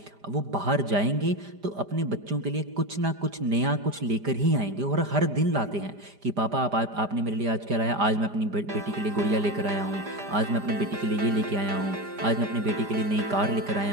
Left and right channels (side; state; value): left; late; 5.0 ms